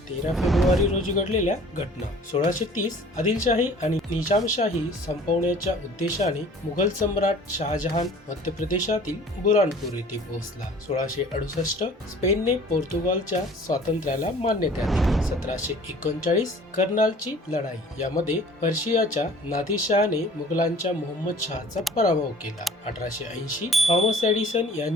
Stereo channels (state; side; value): normal; both; correlation 0.49